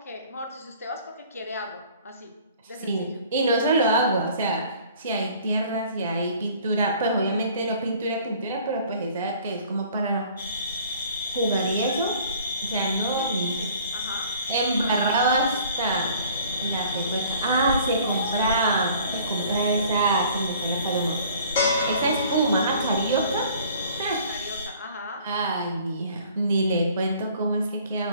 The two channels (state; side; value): inverted; both; correlation -0.53